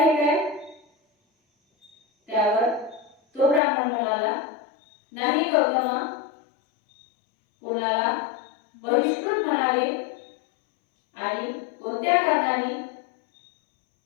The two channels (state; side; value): drops out; right; at 3.6 s